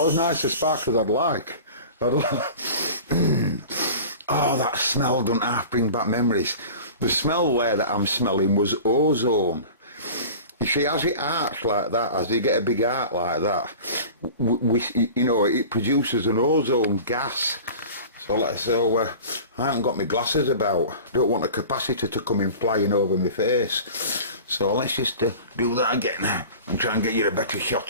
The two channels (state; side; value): inverted; both; correlation -0.38